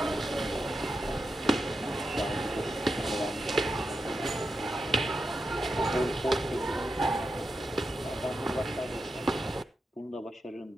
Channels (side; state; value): both; normal; correlation 0.88